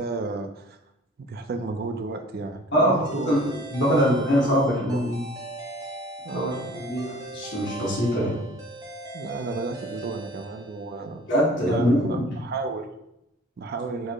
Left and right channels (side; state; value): both; normal; correlation 0.48